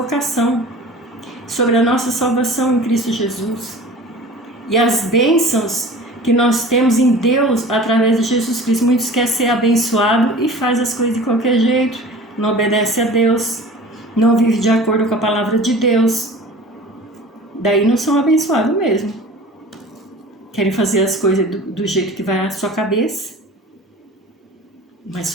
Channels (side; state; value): both; normal; correlation 0.41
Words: sobre a nossa salvação em Cristo Jesus e as bênçãos que nós temos em Deus através de Jesus Cristo. Muitos querem ser abençoados e faz as coisas de qualquer jeito, não obedece a Deus, não vive de acordo com a palavra de Deus. Daí não são abençoados mesmo. Querem fazer as coisas do jeito que vai à sua cabeça. Mas